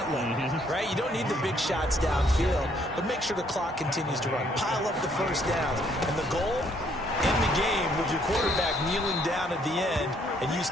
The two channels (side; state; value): both; normal; correlation 0.67